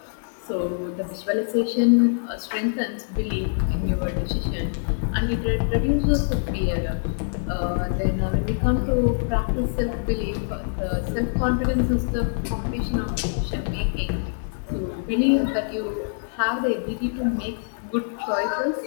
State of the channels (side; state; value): right; silent; digital silence